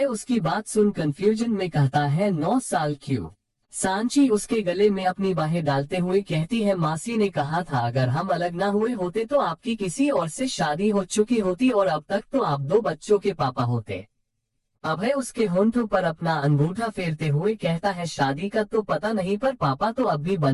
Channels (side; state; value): both; identical; correlation 1.00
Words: उसकी बात सुन कंफ्यूजन में कहता है, 9 साल। क्यों। सांची उसके गले में अपनी बाहें डालते हुए कहती है, मासी ने कहा था अगर हम अलग ना हुए होते तो आपकी किसी और से शादी हो चुकी होती और अब तक तो आप 2 बच्चों के पापा होते। अभय उसके होंठों पर अपना अंगूठा फेरते हुए कहता है, शादी का तो पता नहीं पर पापा तो अब भी